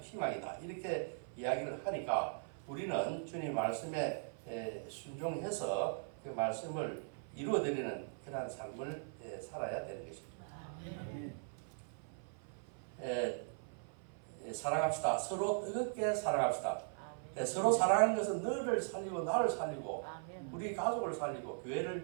희망이다. 이렇게 이야기를 하니까 우리는 주님 말씀에 순종해서 그 말씀을 이루어드리는 그러한 삶을 살아야 되는 것입니다. 사랑합시다. 서로 뜨겁게 사랑합시다. 서로 사랑하는 것은 너를 살리고 나를 살리고 우리 가족을 살리고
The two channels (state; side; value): silent; left; 51 dB below the other